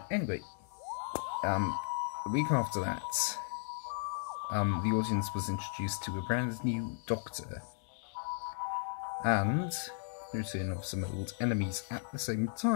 anyway, a week after that, the audience was introduced to a brand new Doctor, and the return of some old enemies at the same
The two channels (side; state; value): right; silent; digital silence